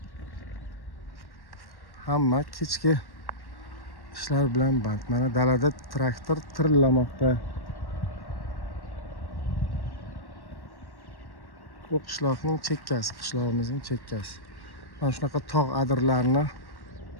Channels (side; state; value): right; late; 1.1 ms